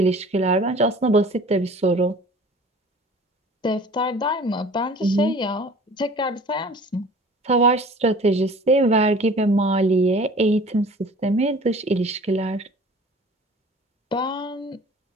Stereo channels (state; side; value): normal; both; correlation 0.46